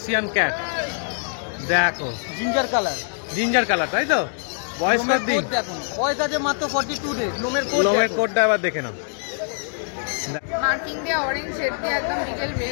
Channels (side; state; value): right; silent; 62 dB below the other